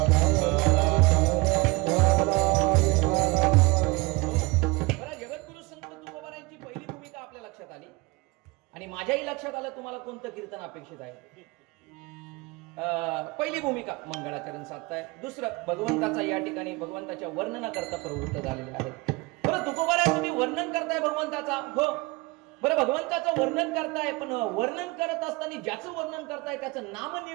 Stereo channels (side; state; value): left; quieter; 24.6 dB